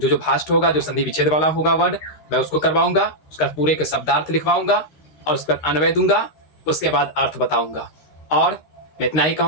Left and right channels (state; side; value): late; right; 13 ms